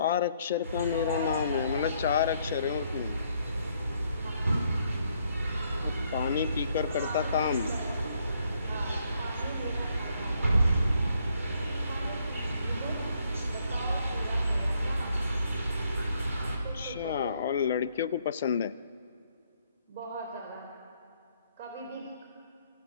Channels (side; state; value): both; inverted; correlation -0.71